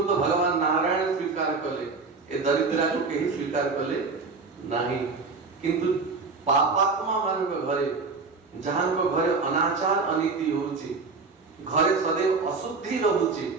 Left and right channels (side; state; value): left; quieter; 4.3 dB